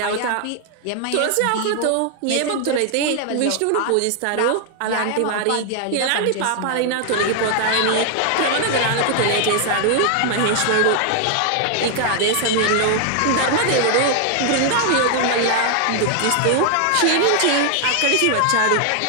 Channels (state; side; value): different; both; correlation 0.00